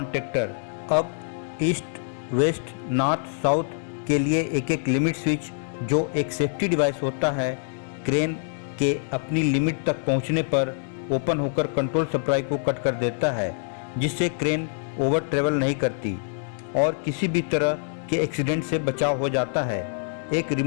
up east west north south के लिए एक एक लिमिट स्विच जो एक सेफ्टी डिवाइस होता है, क्रेन के अपनी लिमिट तक पहुंचने पर ओपन होकर कंट्रोल सप्लाई को कट कर देता है, जिससे क्रेन ओवर ट्रेवल नहीं करती और किसी भी तरह के एक्सीडेंट से बचाव हो जाता है। एक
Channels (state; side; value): silent; right; 62 dB below the other